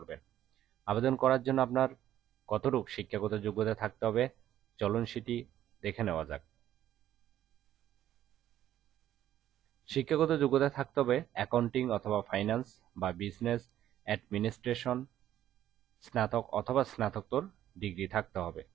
আবেদন করার জন্য আপনার কতটুকু শিক্ষাগত যোগ্যতা থাকতে হবে চলুন সেটি দেখে নেওয়া যাক। শিক্ষাগত যোগ্যতা থাকতে হবে অ্যাকাউন্টিং অথবা ফাইন্যান্স বা বিজনেস অ্যাডমিনিস্ট্রেশন স্নাতক অথবা স্নাতকোত্তর ডিগ্রি থাকতে হবে।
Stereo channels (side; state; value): left; quieter; 12.0 dB